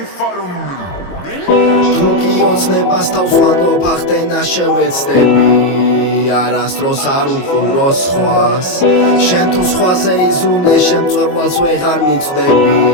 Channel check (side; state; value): right; late; 22 ms